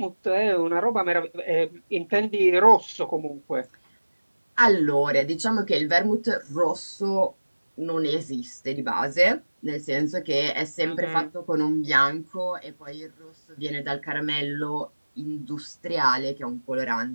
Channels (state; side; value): inverted; both; correlation -1.00